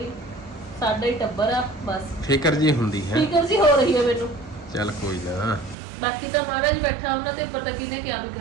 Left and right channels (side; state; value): left; drops out; at 5.8 s